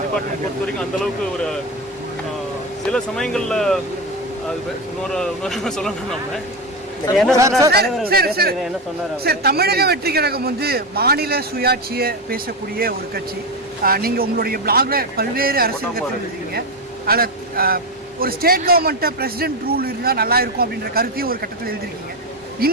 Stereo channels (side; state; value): both; normal; correlation 0.15